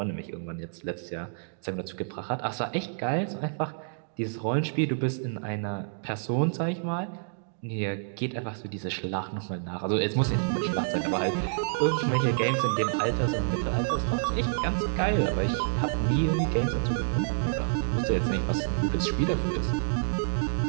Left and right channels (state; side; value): silent; left; digital silence